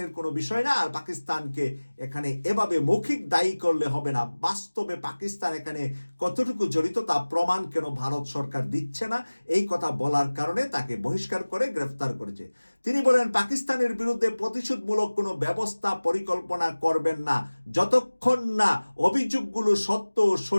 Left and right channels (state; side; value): inverted; both; correlation -1.00